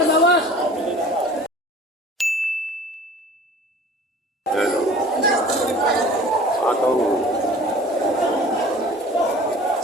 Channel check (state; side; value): normal; both; correlation 0.45